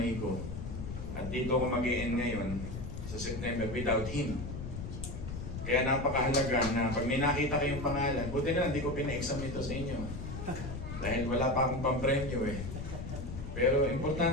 ko. At dito ako mag-i-end ngayon sa September without him. Kaya napakahalaga na pag may nakita kayong pangalan, buti na hindi ko pina-exam ito sa inyo. Dahil wala pa akong pampremyo eh. Pero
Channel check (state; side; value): noise; left; rumble, 7 dB below the sound